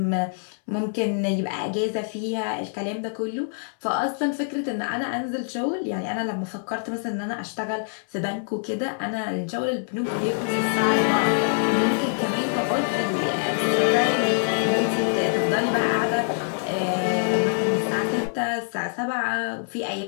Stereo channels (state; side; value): silent; right; 62 dB below the other